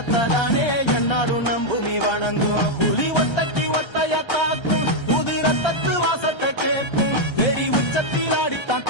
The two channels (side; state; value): right; late; 1.3 ms